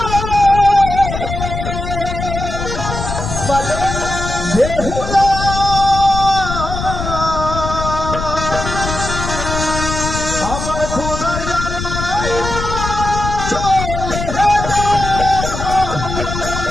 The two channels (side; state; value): left; noise; rumble, 5 dB below the sound